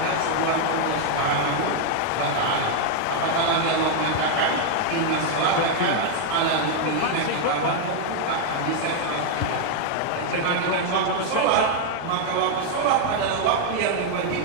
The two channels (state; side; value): different; both; correlation 0.00